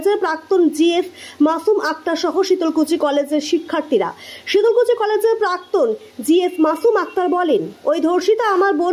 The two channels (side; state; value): both; identical; correlation 1.00